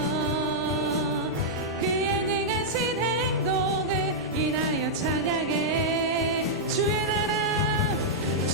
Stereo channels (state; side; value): normal; both; correlation -0.07